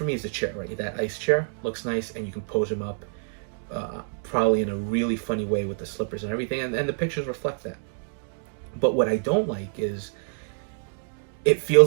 me is the chair, right? That ice chair looks nice, and you can pose him up probably in a really funny way with the slippers and everything. And the pictures reflect that. But what I don't like is it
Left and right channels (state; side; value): silent; left; 60 dB below the other